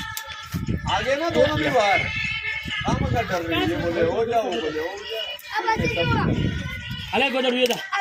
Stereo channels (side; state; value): both; identical; correlation 1.00